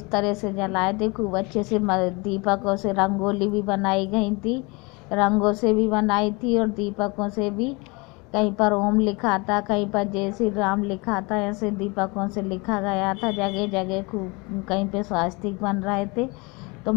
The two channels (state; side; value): quieter; right; 27.5 dB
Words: तरह से जलाए थे, खूब अच्छे से दीपकों से रंगोली भी बनाई गई थी, रंगों से भी बनाई थी, और दीपकों से भी कहीं पर ओम लिखा था, कहीं पर जय श्री राम लिखा था, ऐसे दीपकों से लिखा गया था। जगह जगह खूब कहीं पे स्वास्तिक बन रहे थे। तो